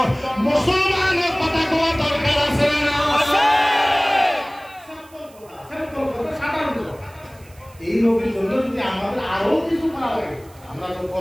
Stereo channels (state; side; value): noise; right; hiss, 27 dB below the sound